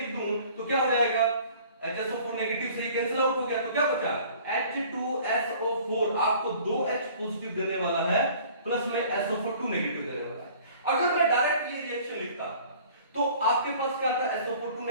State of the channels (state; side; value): inverted; both; correlation -0.50